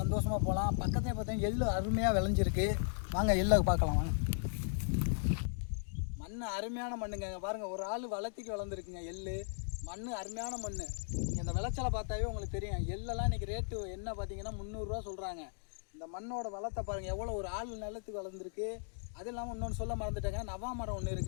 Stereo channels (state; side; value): silent; right; digital silence